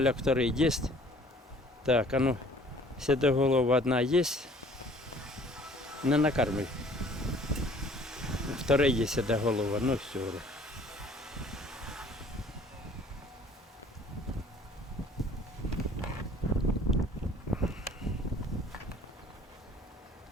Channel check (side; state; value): both; normal; correlation 0.54